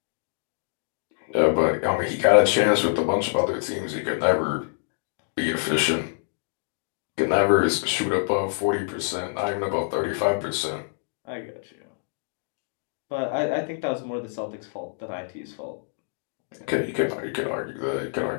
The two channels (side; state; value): right; silent; digital silence